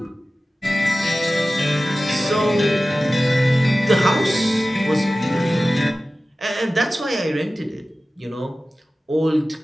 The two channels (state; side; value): normal; both; correlation 0.96